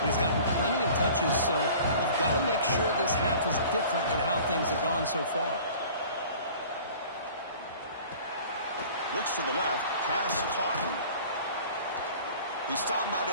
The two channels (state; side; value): inverted; both; correlation -0.46